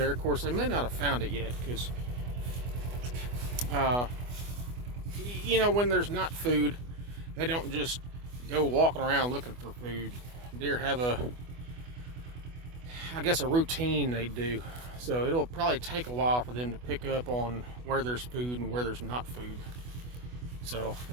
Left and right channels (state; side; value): late; left; 24 ms